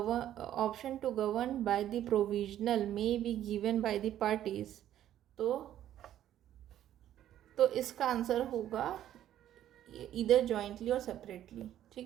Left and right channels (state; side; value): quieter; left; 11.8 dB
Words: govern by the provisional may be given by the parties, तो इसका आंसर होगा इधर जॉइंटली और सेपरेटली।